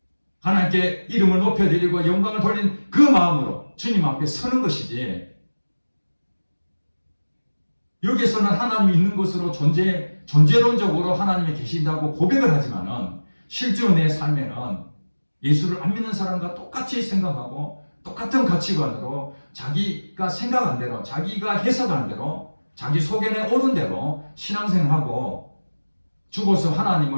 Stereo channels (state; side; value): inverted; both; correlation -1.00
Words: 하나님께 이름을 높여드리고 영광을 돌린 그 마음으로 주님 앞에 서는 것이지 여기서는 하나님이 있는 것으로 존재론적으로 하나님이 계신다고 고백을 하지만은 실제로 내 삶에는 예수를 안 믿는 사람과 똑같이 생각하고 똑같은 가치관으로 자기가 생각한 대로 자기가 해석한 대로 자기 속에 오른 대로 신앙생활하고 죽어서